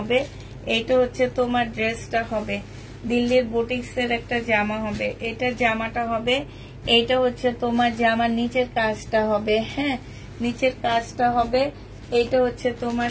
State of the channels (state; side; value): identical; both; correlation 1.00